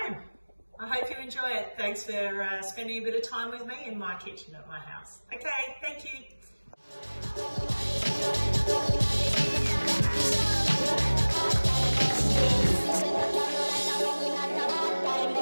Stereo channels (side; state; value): both; inverted; correlation -1.00